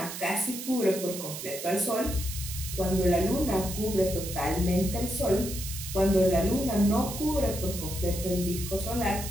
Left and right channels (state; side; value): noise; right; hiss, 8 dB below the sound